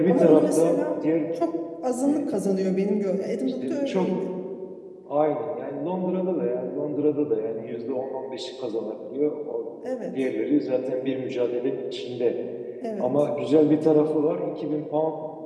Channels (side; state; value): both; identical; correlation 1.00